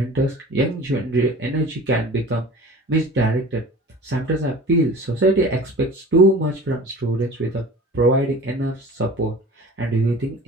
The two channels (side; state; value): both; normal; correlation 0.40